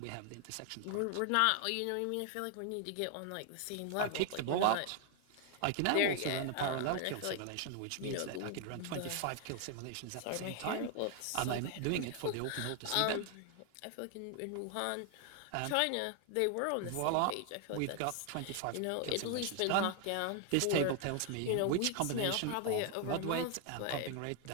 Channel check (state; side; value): different; both; correlation 0.00